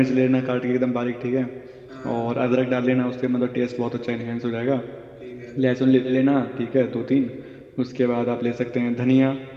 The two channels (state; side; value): identical; both; correlation 1.00